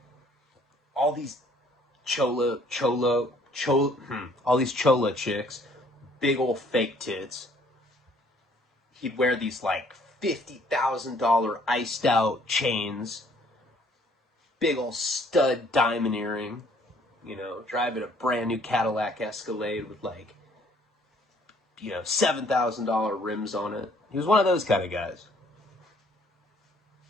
All these all these chola chicks, big old fake tits. He'd wear these like $50,000 iced out chains, big old stud diamond earring, you know, driving a brand new Cadillac Escalade with like, you know, $7,000 rims on it. He was one of those kind of guys.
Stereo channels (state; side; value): normal; both; correlation 0.61